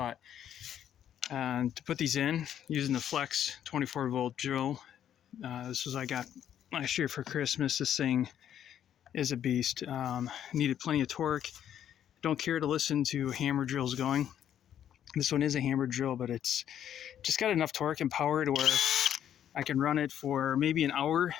And to put these in, using the Flex 24-volt drill. This was I got last year for Christmas. This thing is a beast. Needed plenty of torque. Don't care to listen to hammer drills going. This one is a hammer drill, but it's just got enough torque and power to where I can run it for maybe an hour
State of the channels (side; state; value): right; quieter; 10.1 dB